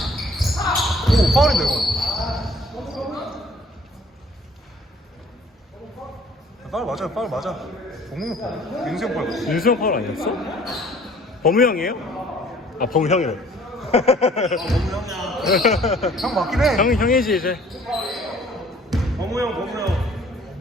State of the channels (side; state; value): both; normal; correlation 0.55